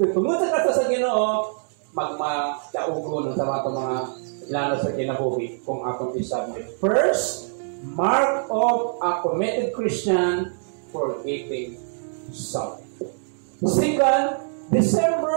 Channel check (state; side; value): silent; left; 63 dB below the other